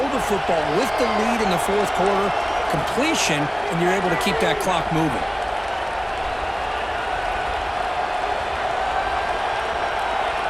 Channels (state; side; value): identical; both; correlation 1.00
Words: the football with the lead in the 4th quarter, completion, and you're able to keep that clock moving.